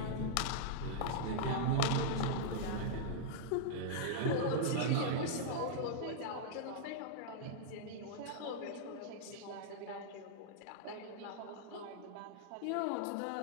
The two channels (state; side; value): different; both; correlation -0.01